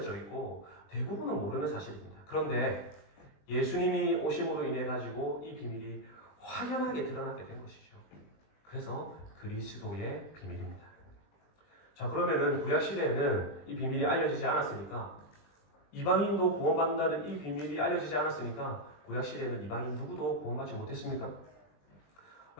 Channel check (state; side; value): late; right; 20 ms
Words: 있고 대부분은 모르는 사실입니다. 그런데 예수님이 오심으로 인해 가지고 이 비밀이 확연하게 드러나게 된 것이죠. 그래서 그리스도의 비밀입니다. 자, 그러면은 구약 시대에는 이 비밀이 알려지지 않았으니까 이방인도 구원받는다는 이 비밀이 알려지지 않았으니까 구약 시대에는 이방인 누구도 구원받지 못했습니까?